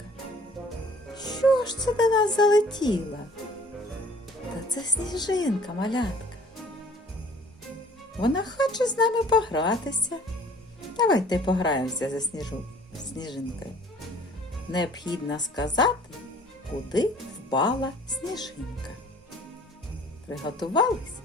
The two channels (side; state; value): both; normal; correlation 0.53